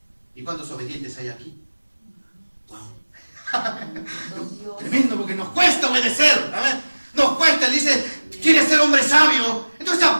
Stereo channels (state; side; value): inverted; both; correlation -1.00